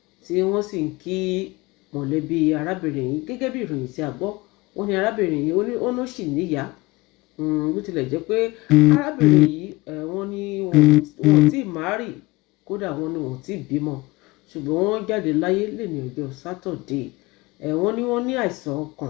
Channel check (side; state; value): right; quieter; 20.7 dB